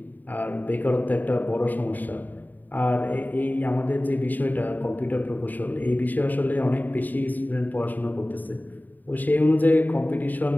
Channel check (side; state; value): right; late; 0.086 ms